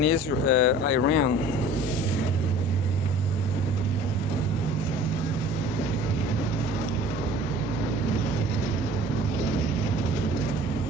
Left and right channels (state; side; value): normal; both; correlation 0.47